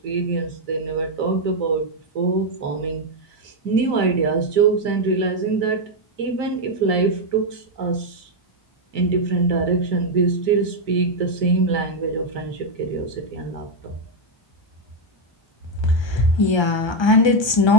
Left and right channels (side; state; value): right; late; 1.3 ms